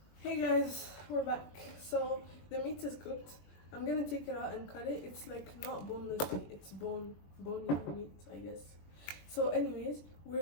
Hey guys, we're back. So the meat is cooked. I'm gonna take it out and cut it. It's like not boneless meat, it's bony meat, I guess. So anyways,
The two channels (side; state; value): right; late; 21 ms